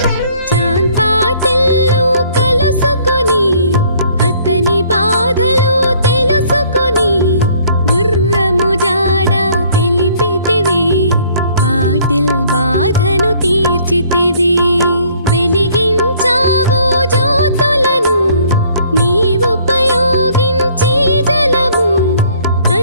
బాధను తీర్చితివి వెలిగించావు జ్యోతులను నీవుపయోగించి జలము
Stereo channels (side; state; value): both; inverted; correlation -0.60